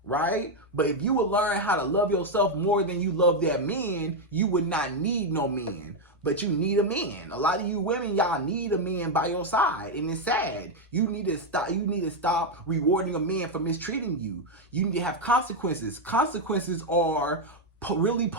right? But if you would learn how to love yourself more than you love that man, you would not need no man. But you need a man. A lot of you women, y'all need a man by your side, and it's sad. You need to stop rewarding a man for mistreating you. You need to have consequences. Consequences are really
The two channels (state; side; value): normal; both; correlation 0.03